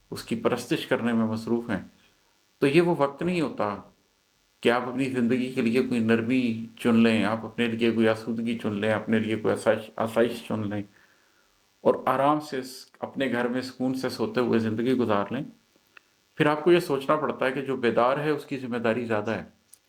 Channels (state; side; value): identical; both; correlation 1.00